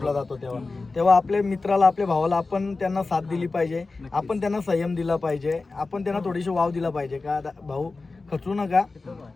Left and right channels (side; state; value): right; quieter; 3.7 dB